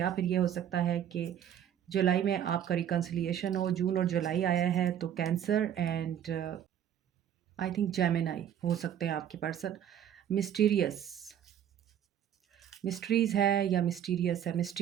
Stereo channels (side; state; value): left; quieter; 9.8 dB